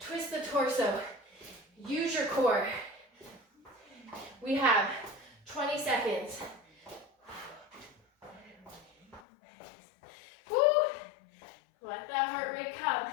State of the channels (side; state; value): right; drops out; at 9.2 s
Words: the torso. Use your core. We have 20 seconds. Woo! Let that heart rate come